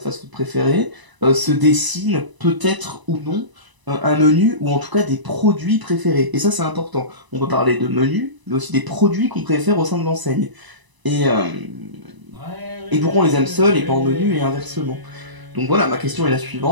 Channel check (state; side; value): late; left; 1.0 ms